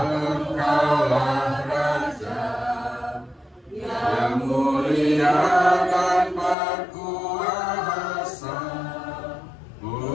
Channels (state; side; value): drops out; right; at 6.6 s